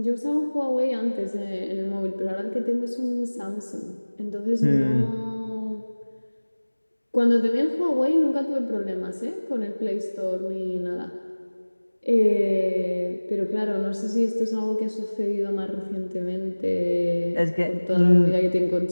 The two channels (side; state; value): both; inverted; correlation -1.00